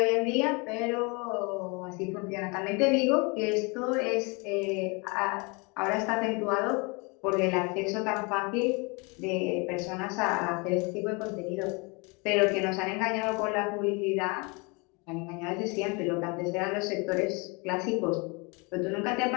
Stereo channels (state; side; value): quieter; right; 29.7 dB